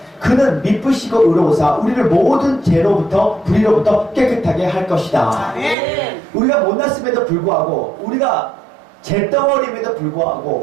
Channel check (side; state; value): left; drops out; at 5.8 s